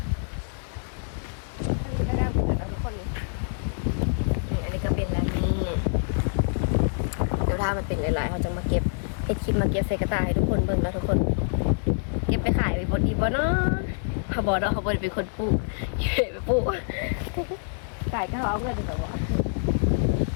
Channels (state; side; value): silent; right; digital silence